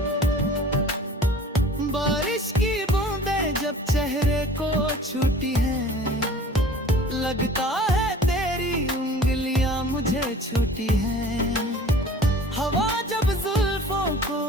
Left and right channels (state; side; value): normal; both; correlation 0.46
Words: बारिश की बूंदें जब चेहरे को छूती हैं, लगता है तेरी उंगलियां मुझे छूती हैं। हवा जब जुल्फों को